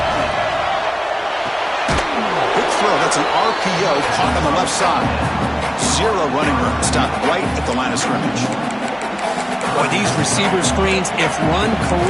That's an RPO caught on the left side. Zero running room. Stopped right at the line of scrimmage. Boy, these receiver screens, if run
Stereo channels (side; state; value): both; identical; correlation 1.00